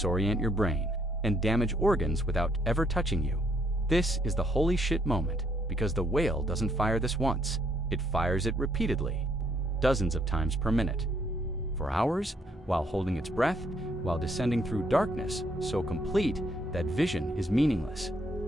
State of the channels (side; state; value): both; normal; correlation 0.70